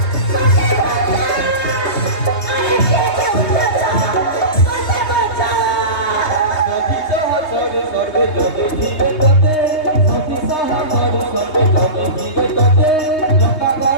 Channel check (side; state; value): right; late; 3.2 ms